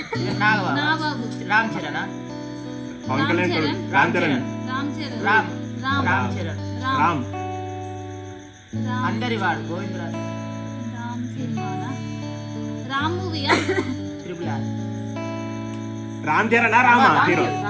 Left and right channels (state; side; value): identical; both; correlation 1.00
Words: రామ్ చరణ్ పవన్ కళ్యాణ్ రామ్ చరణ్ రామ్ అందరి వాడు Govindaraj Ram movie triple R Ram Charan Rama hero